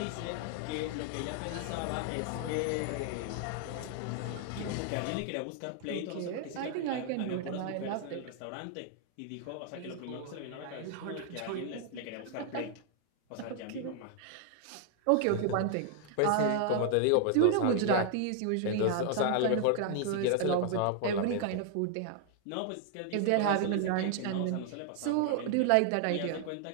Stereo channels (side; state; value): both; different; correlation 0.00